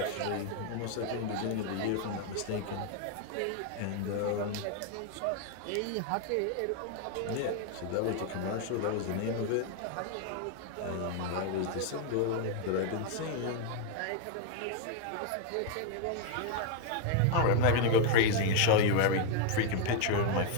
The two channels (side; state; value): both; different; correlation 0.00